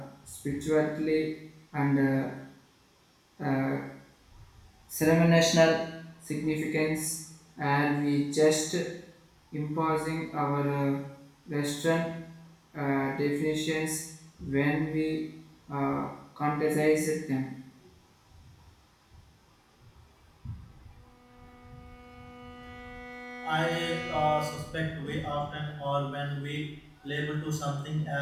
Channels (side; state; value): both; identical; correlation 1.00